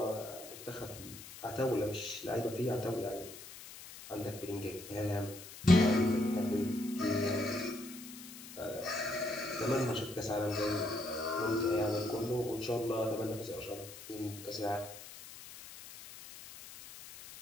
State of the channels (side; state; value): left; noise; hiss, 14 dB below the sound